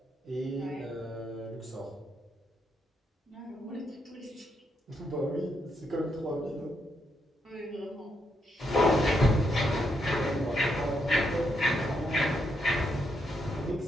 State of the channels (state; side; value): normal; both; correlation 0.79